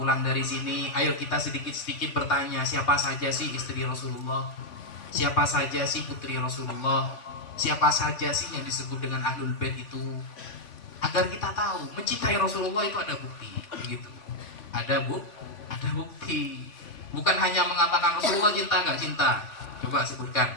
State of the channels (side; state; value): right; late; 3.5 ms